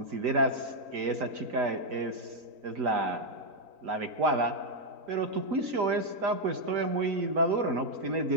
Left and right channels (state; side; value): late; left; 3.9 ms